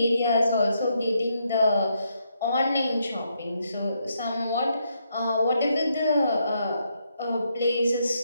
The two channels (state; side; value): inverted; both; correlation -0.77